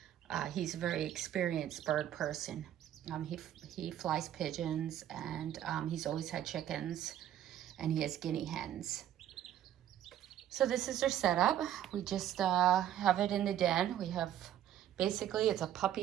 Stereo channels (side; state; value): left; quieter; 11.4 dB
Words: He's a very experienced bird person. He flies pigeons, and he's always had chickens, and he has guinea hens. So this is their setup. We just have it in the den. We have, basically it's a